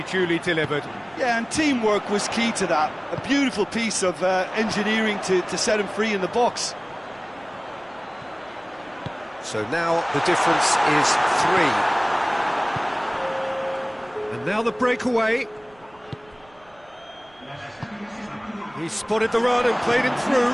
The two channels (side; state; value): right; noise; rumble, 30 dB below the sound